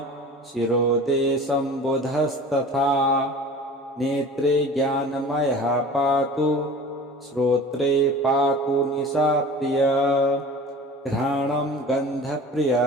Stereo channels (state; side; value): normal; both; correlation 0.40